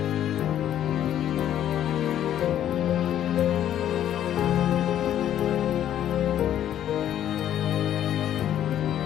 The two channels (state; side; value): quieter; right; 11.0 dB